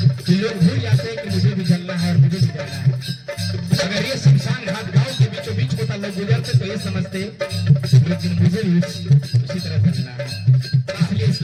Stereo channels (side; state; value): both; identical; correlation 1.00